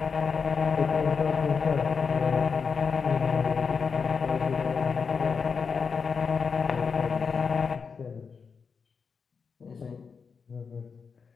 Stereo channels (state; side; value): quieter; right; 5.6 dB